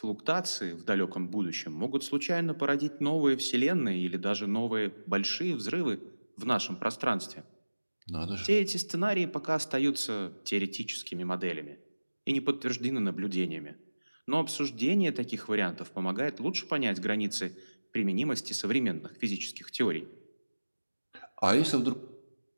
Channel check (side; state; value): both; inverted; correlation -1.00